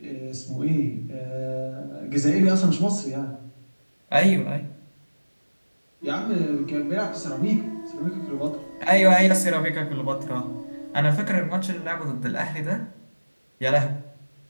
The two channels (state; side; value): inverted; both; correlation -1.00